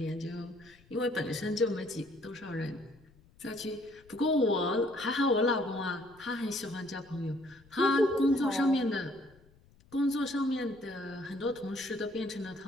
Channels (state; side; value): noise; left; rumble, 28 dB below the sound